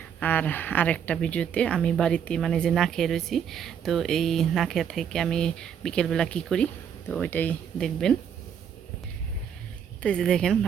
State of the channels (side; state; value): left; quieter; 8.1 dB